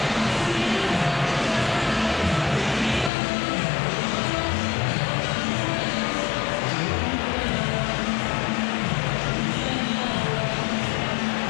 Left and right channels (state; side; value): drops out; right; at 3.1 s